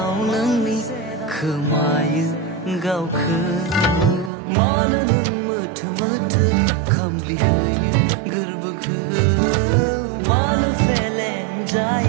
नोंनि खोमायो गावखौ मानो नों मोथो मोथो खामग्लिहोयो गोरबोखौ मानो फेलें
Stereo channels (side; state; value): left; drops out; at 4.3 s